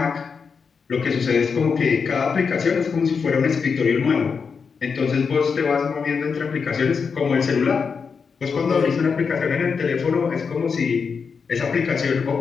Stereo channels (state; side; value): quieter; right; 5.7 dB